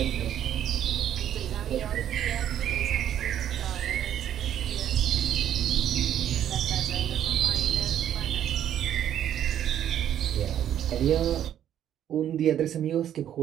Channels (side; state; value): left; quieter; 10.5 dB